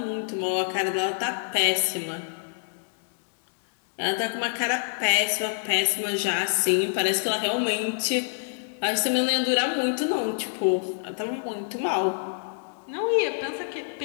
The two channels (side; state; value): right; silent; digital silence